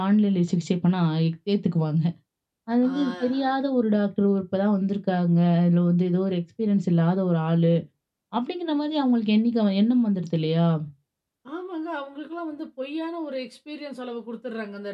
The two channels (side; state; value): both; identical; correlation 1.00